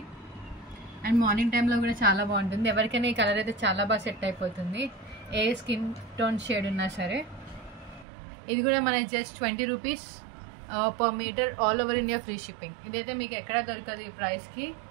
అండ్ మార్నింగ్ టైంలో కూడా చాలా బాగుంటుంది. ఎవరికైనా ఈ కలర్ అయితే చాలా బాగా సెట్ అయిపోతుంది, ఏ స్కిన్ టోన్ షేడ్ ఉన్నా సరే. ఇది కూడా మనకి just 20 rupees per metre. All over India free shipping. ఇదైతే మీకు ఎక్కడ దొరకదు ఈ ప్రైస్కి.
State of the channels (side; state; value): left; drops out; at 8.1 s